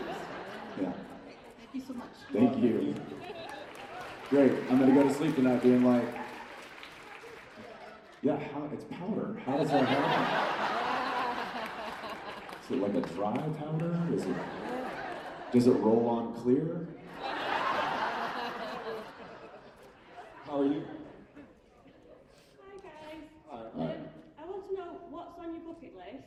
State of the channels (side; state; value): both; identical; correlation 1.00